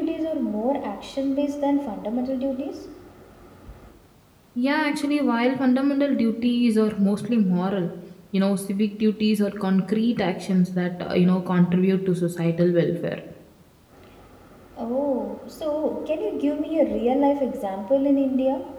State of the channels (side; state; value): both; identical; correlation 1.00